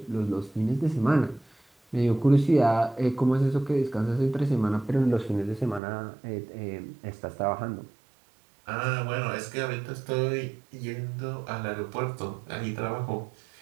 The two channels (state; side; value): drops out; left; at 5.8 s